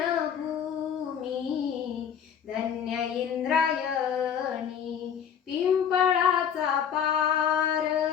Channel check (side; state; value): right; quieter; 8.1 dB